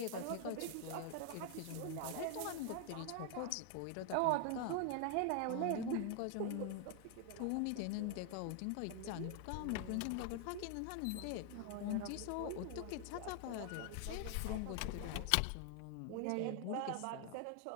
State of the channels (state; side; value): different; both; correlation 0.00